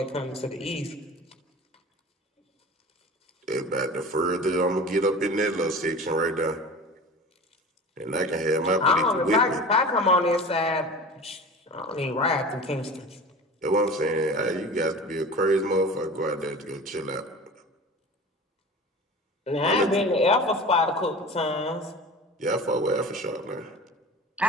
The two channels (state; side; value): normal; both; correlation 0.37